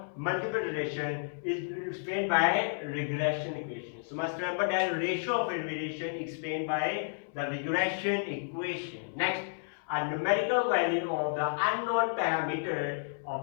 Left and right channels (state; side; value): silent; right; 57 dB below the other